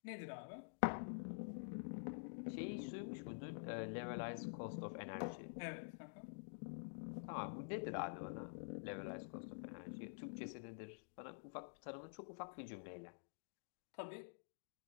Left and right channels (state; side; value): silent; right; digital silence